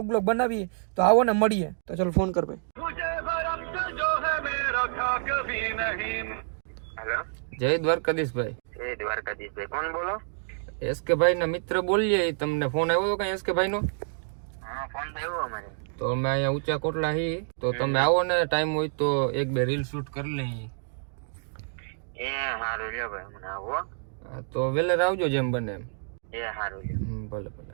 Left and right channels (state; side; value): silent; left; digital silence